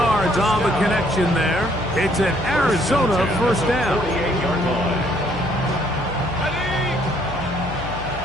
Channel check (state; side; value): noise; left; hum, 12 dB below the sound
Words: on the connection there. It's an Arizona 1st down. 48-yard line.